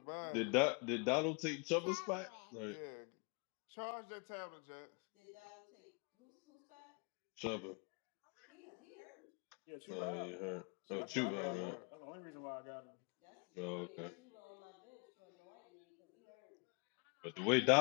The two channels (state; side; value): quieter; right; 35.3 dB